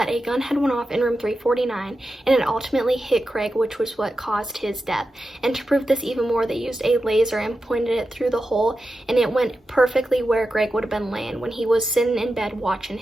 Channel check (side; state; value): both; normal; correlation 0.91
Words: a gun had went off in room 349 and it ultimately hit Greg, which was what caused his death. And to prove this even more, they used a laser and pointed it through the hole, and it went perfectly where Greg would have been laying when he was sitting in bed watching